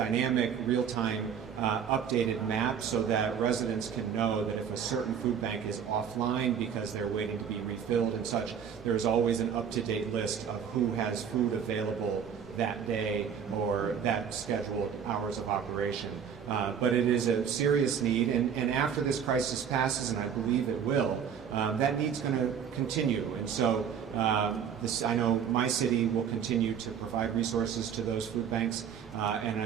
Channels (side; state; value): left; quieter; 7.7 dB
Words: real-time updated map so that residents can know that if a certain food bank is offline because they're waiting to be refilled and such, there's always an up-to-date list of who has food available that day or that scheduled hours of operation. But it is a serious need, and after this crisis passes, and I believe it will, that need's going to continue. And so I know my city will continue to provide resources to those food banks, and